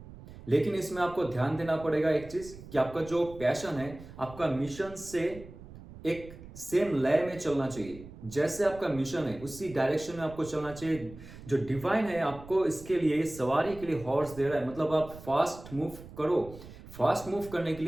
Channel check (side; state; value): right; noise; rumble, 16 dB below the sound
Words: लेकिन इसमें आपको ध्यान देना पड़ेगा एक चीज कि आपका जो पैशन है, आपका मिशन से एक सेम लय में चलना चाहिए। जैसे आपका मिशन है उसी डायरेक्शन में आपको चलना चाहिए। जो डिवाइन है आपको इसके लिए सवारी के लिए हॉर्स दे रहा है, मतलब आप फास्ट मूव करो। फास्ट मूव करने के